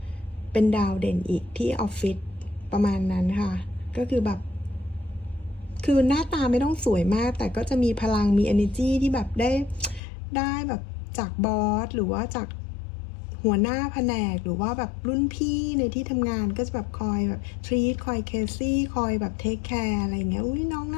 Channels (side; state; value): right; drops out; at 10.0 s